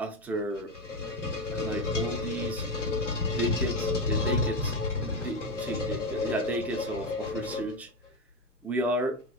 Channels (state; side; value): normal; both; correlation 0.14